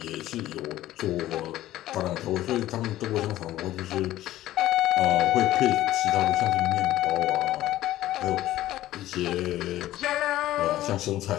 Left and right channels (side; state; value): right; quieter; 14.6 dB